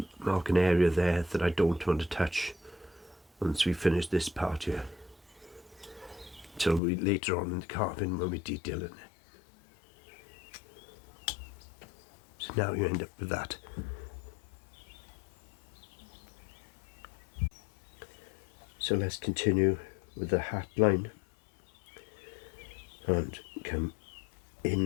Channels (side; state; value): right; drops out; at 6.8 s